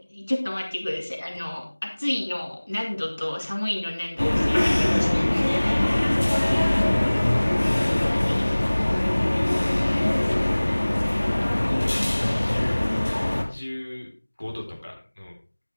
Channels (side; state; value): both; inverted; correlation -1.00